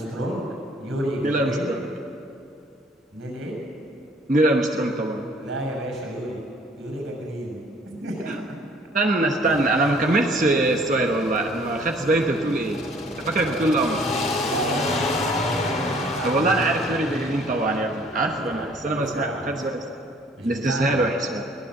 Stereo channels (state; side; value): normal; both; correlation 0.57